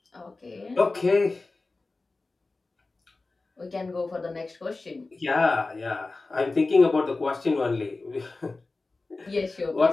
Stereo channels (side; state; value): right; quieter; 3.5 dB